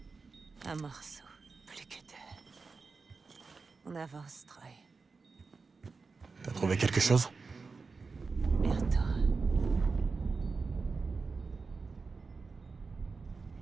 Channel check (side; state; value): left; quieter; 4.4 dB